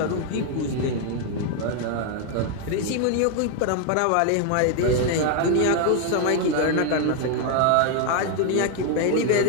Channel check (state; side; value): different; both; correlation 0.01